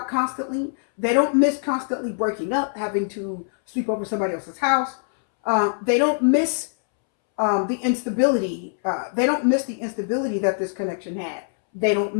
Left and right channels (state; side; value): silent; right; 63 dB below the other